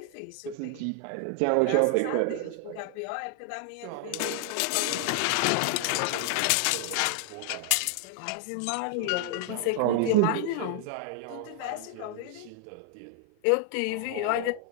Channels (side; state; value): both; different; correlation 0.00